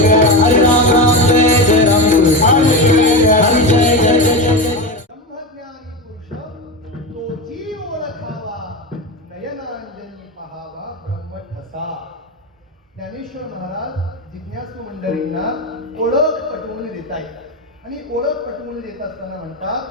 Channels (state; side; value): normal; both; correlation 0.19